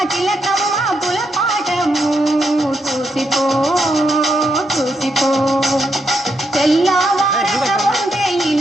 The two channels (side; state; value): both; normal; correlation 0.80